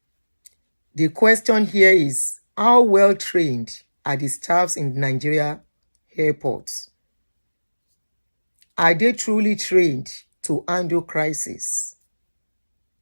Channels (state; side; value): inverted; both; correlation -1.00